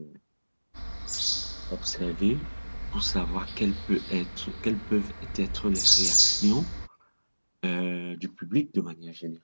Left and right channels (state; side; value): inverted; both; correlation -1.00